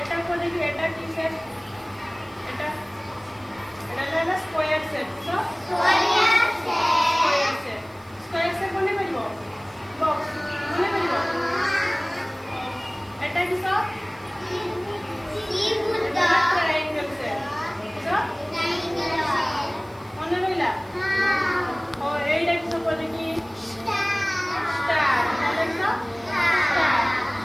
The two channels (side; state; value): right; noise; hiss, 28 dB below the sound